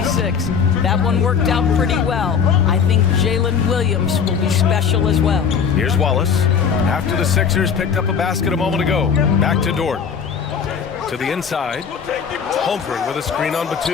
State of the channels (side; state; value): right; quieter; 6.8 dB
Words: That one worked out pretty well. I think Jalen Williams will be special as well. Here's Wallace. After the Sixers picked up a basket a moment ago. Back to Dort. To the inside. Holmgren with a screen on